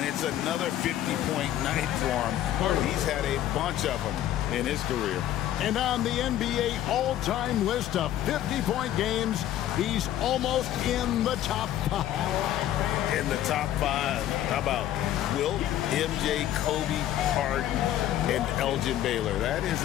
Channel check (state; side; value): quieter; right; 12.3 dB